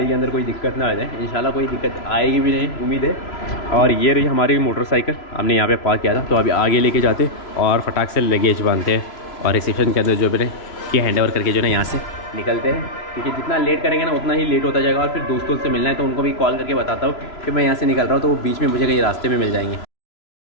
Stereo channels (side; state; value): right; late; 3.0 ms